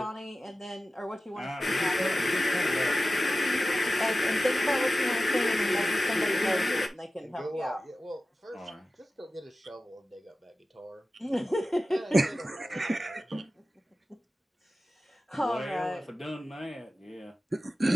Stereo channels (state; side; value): normal; both; correlation 0.95